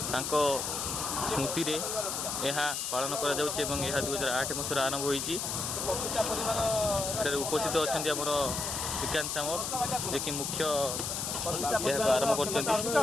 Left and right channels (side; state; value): left; noise; hiss, 2 dB below the sound